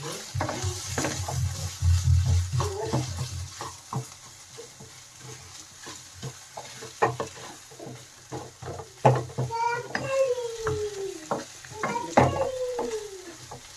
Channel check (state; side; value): identical; both; correlation 1.00